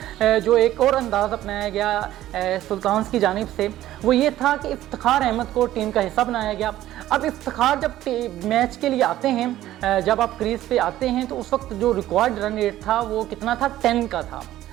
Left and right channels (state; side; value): quieter; left; 13.9 dB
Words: जो एक और अंदाज़ अपनाया गया सुल्तान की जानिब से वो ये था कि इफ्तिखार अहमद को टीम का हिस्सा बनाया गया। अब इफ्तिखार जब मैच के लिए आते हैं, जब आप क्रीज पे आते हैं तो उस वक्त जो रिक्वायर्ड रन रेट था वो कितना था, 10 का था,